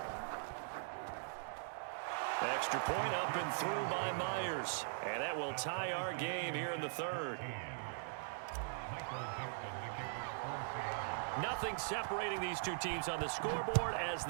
Extra point up and through by Myers. And that will tie our game here in the 3rd. Nothing separating these two teams on the scoreboard as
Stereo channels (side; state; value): left; silent; digital silence